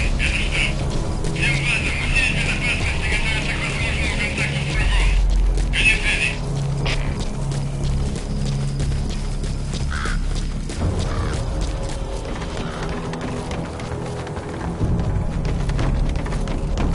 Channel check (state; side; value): identical; both; correlation 1.00